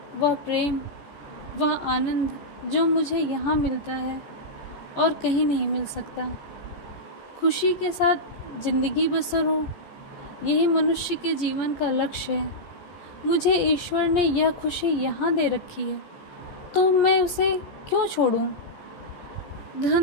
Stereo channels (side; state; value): right; late; 14 ms